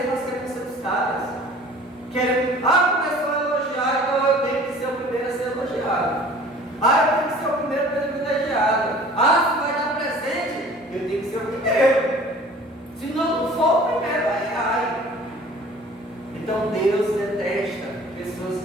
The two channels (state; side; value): normal; both; correlation 0.48